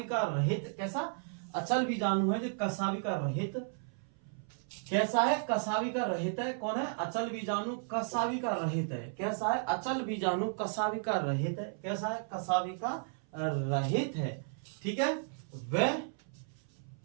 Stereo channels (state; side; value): silent; left; 55 dB below the other